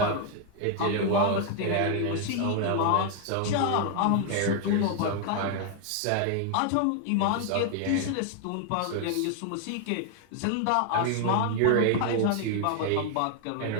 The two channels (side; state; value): both; different; correlation 0.00